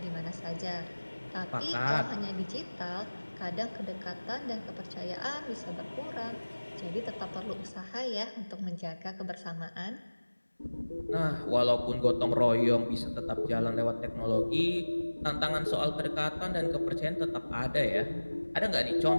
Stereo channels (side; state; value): both; inverted; correlation -1.00